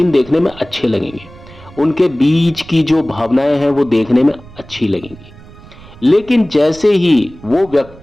देखने में अच्छे लगेंगे। उनके बीच की जो भावनाएं हैं वो देखने में अच्छी लगेंगी। लेकिन जैसे ही वो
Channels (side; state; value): right; noise; rumble, 20 dB below the sound